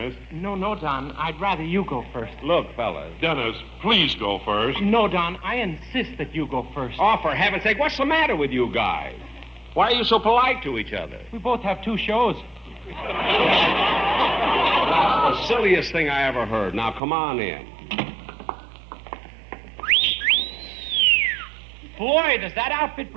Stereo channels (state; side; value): drops out; left; at 17.0 s